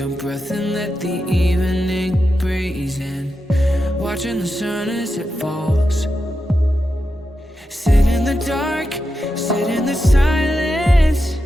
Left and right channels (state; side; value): normal; both; correlation 0.88